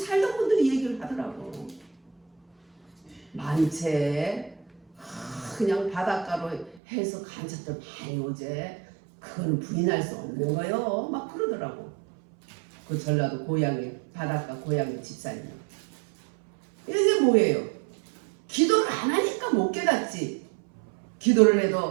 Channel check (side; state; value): left; drops out; at 6.8 s